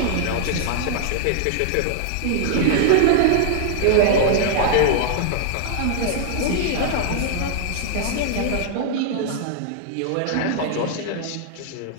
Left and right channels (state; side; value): different; both; correlation -0.01